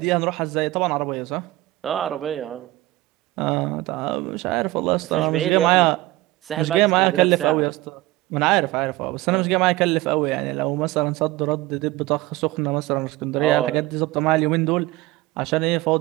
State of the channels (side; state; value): left; quieter; 18.3 dB